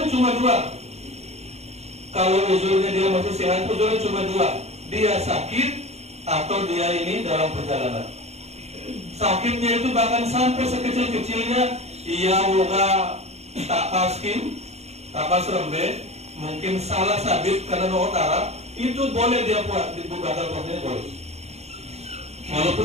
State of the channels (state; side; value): late; left; 0.31 ms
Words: tuh cuma dua. Kalau uzurnya dia masih sehat, uzurnya cuma dua. Dia sakit atau dia ini dalam perjalanan. Sakitnya itu bahkan sampai sekecil-kecilnya ia woga tapaskin, tapas rembe, mungkin salah sabit karena utara, itu boleh dia buat dibukakan puasanya boleh. Walaupun